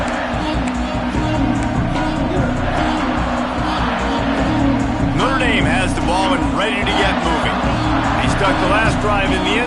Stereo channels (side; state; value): both; identical; correlation 1.00